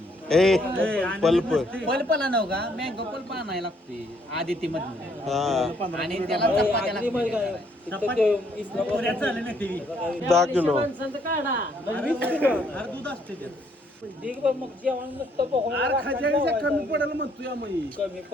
ए पल्प पल्पला नव का मँगो पल्प आणायला लागते आदिती मधून हा आणि त्याला चपात्या लागते. 10 किलो माणसांचं काढा दूध असते मग जेवण नुसतं कमी पडेल म्हणतोय आम्ही. कमी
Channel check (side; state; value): both; normal; correlation 0.68